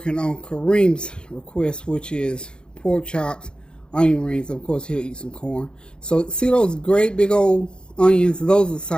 on Kareem's request, which is pork chops, onion rings. Of course, he'll eat some corn. So, see those great big old onions? Those are the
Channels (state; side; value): late; right; 0.050 ms